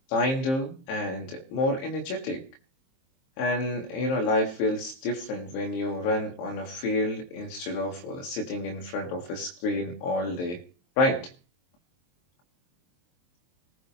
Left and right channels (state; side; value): late; right; 23 ms